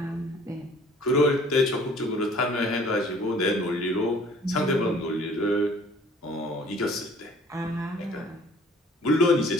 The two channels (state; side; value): normal; both; correlation 0.53